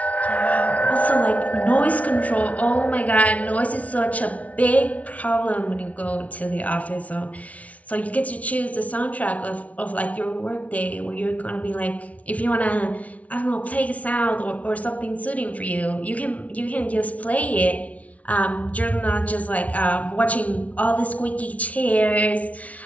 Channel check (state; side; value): late; right; 0.068 ms